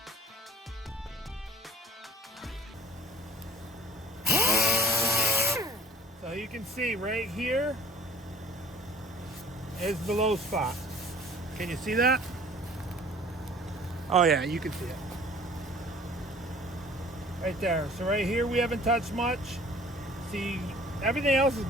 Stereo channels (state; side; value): normal; both; correlation 0.52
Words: So you can see right here is the low spot. Can you see that? Oh yeah, you can see it. Right there. So right here we haven't touched much. See, everything else is